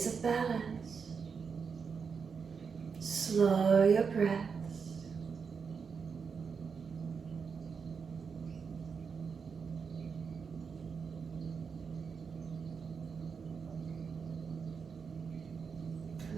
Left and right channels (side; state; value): left; quieter; 5.8 dB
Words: a balance. Slow your breaths.